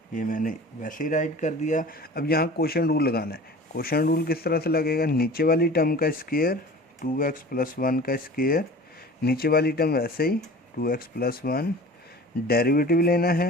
ये मैंने वैसे ही राइट कर दिया। अब यहाँ क्वोशिएंट रूल लगाना है। क्वोशिएंट रूल किस तरह से लगेगा, नीचे वाली टर्म का स्क्वायर 2x + 1 का स्क्वायर, नीचे वाली टर्म वैसे ही 2x + 1, डेरिवेटिव लेना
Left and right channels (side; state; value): both; normal; correlation 0.41